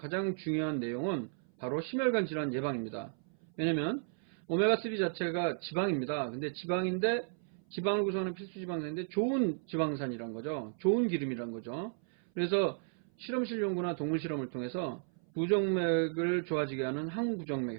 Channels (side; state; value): left; silent; 55 dB below the other